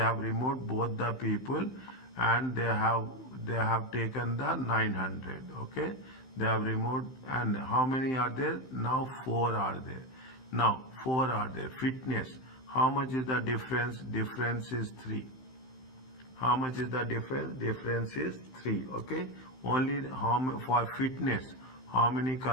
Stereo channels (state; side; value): late; right; 15 ms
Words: have removed both the people, and they have taken the 900. Okay, they have removed, and how many are there now? 4 are there. Now 4 are there. Fitness. How much is the difference? Difference is 3. How much is the difference? Difference is 3. Okay, only for fitness. How many